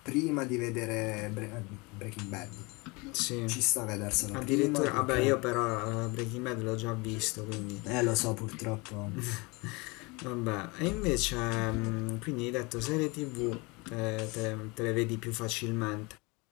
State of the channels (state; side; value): quieter; right; 26.7 dB